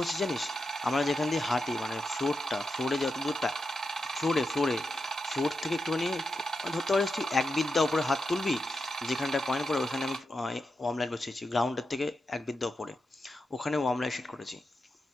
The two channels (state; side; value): normal; both; correlation 0.87